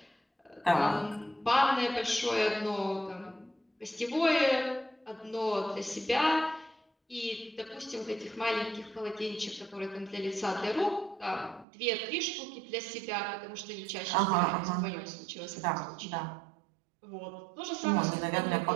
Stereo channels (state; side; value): drops out; left; at 11.7 s